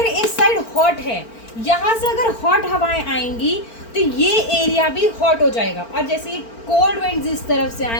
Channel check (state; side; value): late; right; 4.4 ms